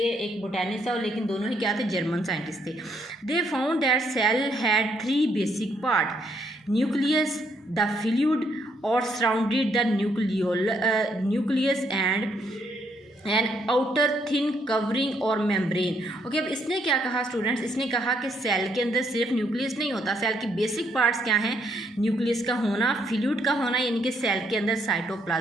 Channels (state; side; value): normal; both; correlation 0.72